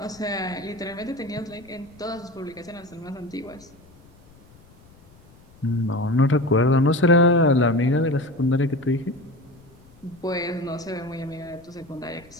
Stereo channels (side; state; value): left; noise; rumble, 26 dB below the sound